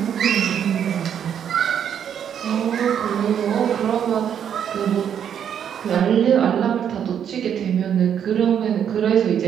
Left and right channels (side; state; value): left; quieter; 8.7 dB